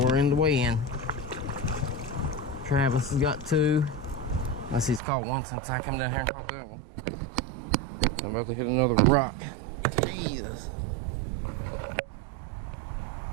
we're in the weigh-in. Travis has got 2. Unless he's caught one since I come down here and caught that one. I'm about to hit another rock. Jesus.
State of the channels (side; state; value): left; drops out; at 5.0 s